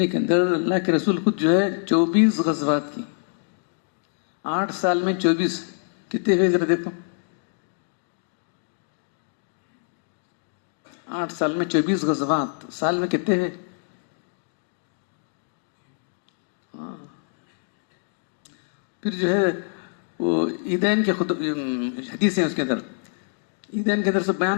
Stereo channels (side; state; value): right; silent; digital silence